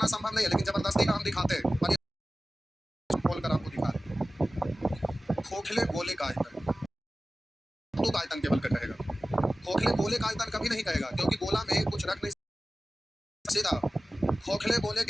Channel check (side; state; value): both; normal; correlation 0.96